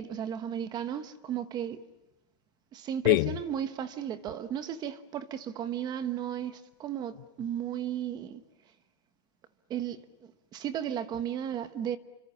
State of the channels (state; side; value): normal; both; correlation 0.22